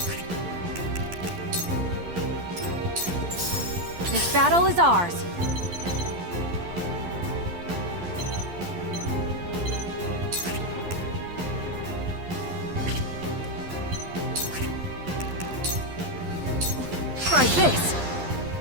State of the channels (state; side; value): late; left; 12 ms